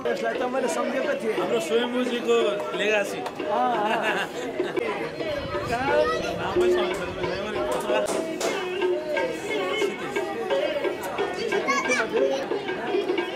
त्यसलाई त मैले सम्झेको थिएँ हाम्रो स्वयम्भूजीको लेगासी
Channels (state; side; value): identical; both; correlation 1.00